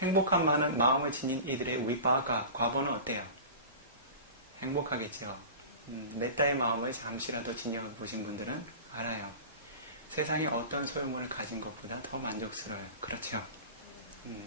행복한 마음을 지닌 이들의 위바가, 과보는 어때요? 행복하겠죠. 메타의 마음을 잠시라도 지녀보신 분들은 알아요. 세상에 어떤 소유물을 가진 것보다 더 만족스러워요. 그렇죠?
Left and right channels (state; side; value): inverted; both; correlation -0.35